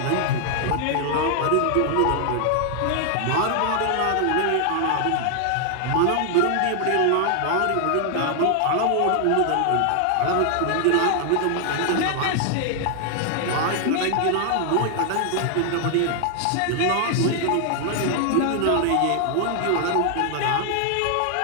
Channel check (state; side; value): different; both; correlation 0.00